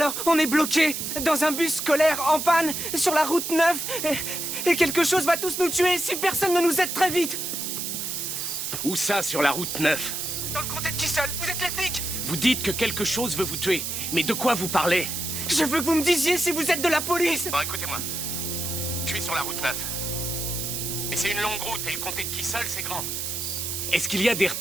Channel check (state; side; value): noise; right; hiss, 4 dB below the sound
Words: on est bloqué dans un bus scolaire en panne sur la route 9 et quelque chose va tous nous tuer si personne ne nous aide très vite. Où ça, sur la route 9? Dans le comté de Kissel, vous êtes les flics? Vous dites que quelque chose veut vous tuer. Mais de quoi vous parlez? Je veux que vous me disiez si vous êtes de la police. Bon, écoutez-moi. Je suis sur la route 9. Et c'est une longue route, et le comté de Kissel, c'est grand. Est-ce qu'il y a des